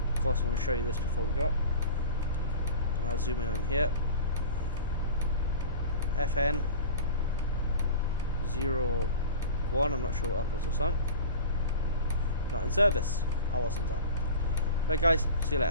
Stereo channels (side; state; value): both; inverted; correlation -0.35